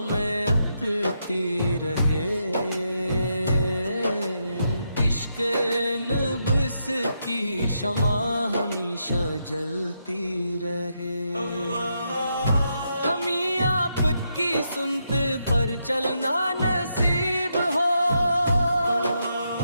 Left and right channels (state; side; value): inverted; both; correlation -0.81